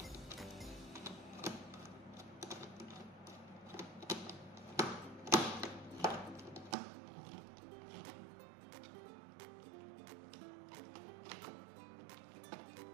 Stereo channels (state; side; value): drops out; left; at 6.8 s